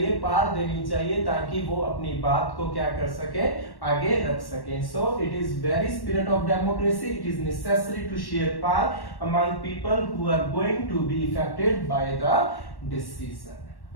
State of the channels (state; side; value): late; right; 1.1 ms